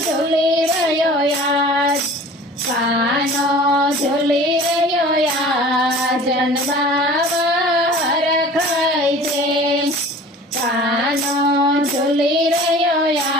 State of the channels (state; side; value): normal; both; correlation 0.44